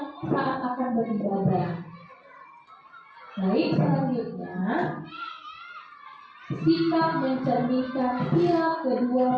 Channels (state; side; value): identical; both; correlation 1.00